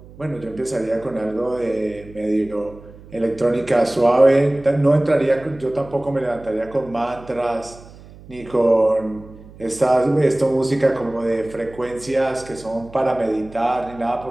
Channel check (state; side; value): noise; right; hum, 20 dB below the sound